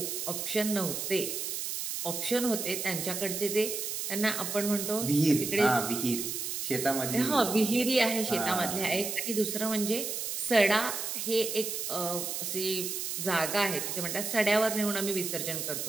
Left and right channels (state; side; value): noise; right; hiss, 3 dB below the sound